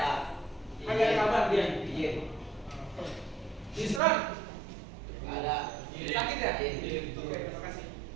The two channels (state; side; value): drops out; left; at 4.0 s